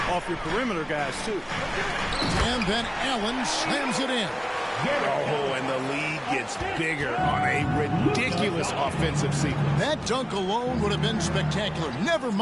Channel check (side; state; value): both; identical; correlation 1.00